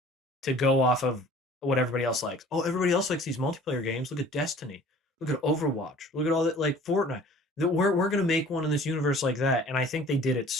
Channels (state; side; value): normal; both; correlation 0.49